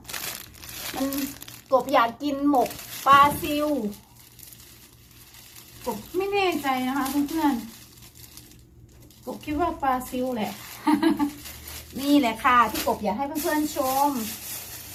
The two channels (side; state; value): both; identical; correlation 1.00